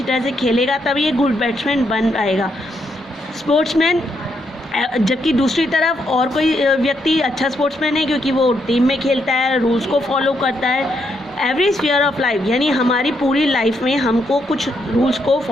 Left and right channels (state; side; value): normal; both; correlation 0.78